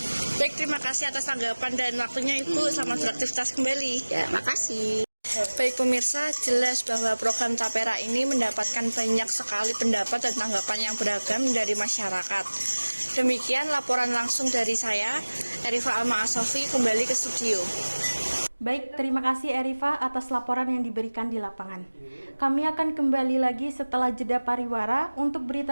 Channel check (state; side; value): inverted; both; correlation -1.00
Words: Baik, terima kasih atas tanggapan dan waktunya Ibu. Selamat beraktivitas kembali. Ya, makasih. Baik pemirsa, jelas bahwa program Tapera ini mendapatkan banyak sekali pendapat dan tanggapan yang beragam dari masyarakat. Demikian laporan langsung dari saya, Erifa Alma Asofi, kembali ke studio. Baik, terima kasih Erifa atas laporan yang diberikan di lapangan. Kami akan kembali lagi setelah jeda pariwara untuk